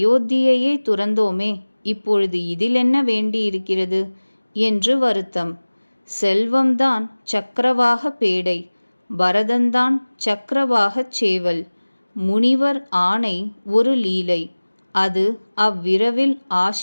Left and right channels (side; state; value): both; inverted; correlation -1.00